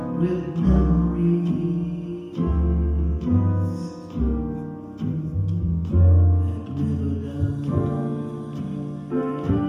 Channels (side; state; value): both; identical; correlation 1.00